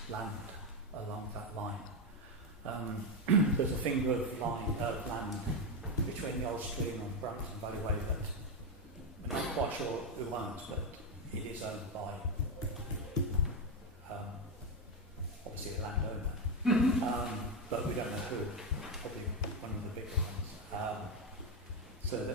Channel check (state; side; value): normal; both; correlation 0.09